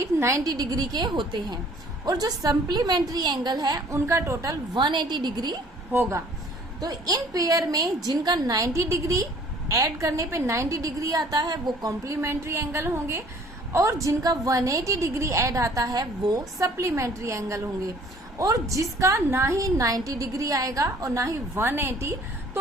90 डिग्री के होते हैं, और जो सप्लीमेंट्री एंगल है उनका टोटल 180 डिग्री होगा। तो इन पेयर में जिनका 90 डिग्री ऐड करने पे 90 डिग्री आता है वो कॉम्प्लीमेंट्री एंगल होंगे, और जिनका 180 डिग्री ऐड आता है वो सप्लीमेंट्री एंगल होंगे। और जिसका ना ही 90 डिग्री आएगा और ना ही 180,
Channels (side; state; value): both; normal; correlation 0.54